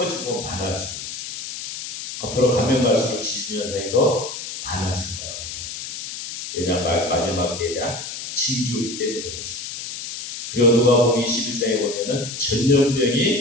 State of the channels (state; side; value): noise; left; hiss, 8 dB below the sound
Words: 많아지고 있습니다. 앞으로 가면 갈수록 지진 현상이 더 많아질 거라고 합니다. 왜냐하면 마지막 때에 대한 징조이기 때문에 그렇습니다. 그리고 누가복음 21장에 보면은